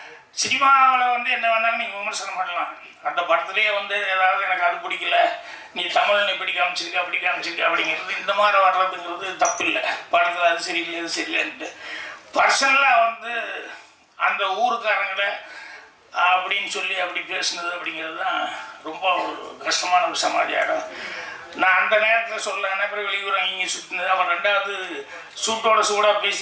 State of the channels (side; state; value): both; identical; correlation 1.00